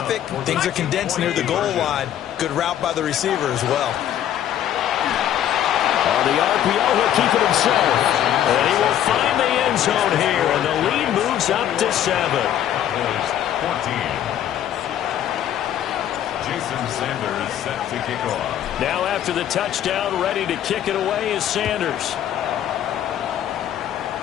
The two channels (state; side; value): quieter; right; 10.9 dB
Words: things are condensed near the goal line. Good route by the receiver as well. On the RPO, he'll keep it himself. And he will find the end zone here, and the lead moves up to 7. Jason Sanders set to kick off. Now after the touchdown, ready to kick it away is Sanders.